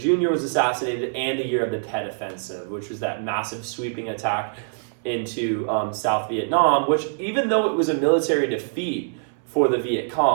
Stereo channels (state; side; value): silent; left; 63 dB below the other